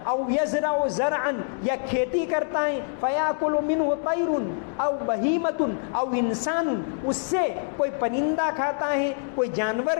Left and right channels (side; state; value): right; silent; digital silence